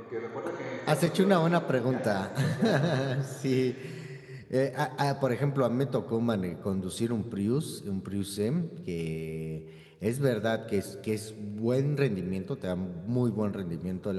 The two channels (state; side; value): identical; both; correlation 1.00